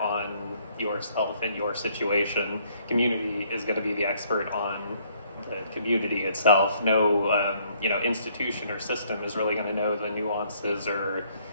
yourself and your situation. Community is going to be the expert on the community itself. No, institution or system is really going to know the nuances or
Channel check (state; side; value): inverted; both; correlation -0.65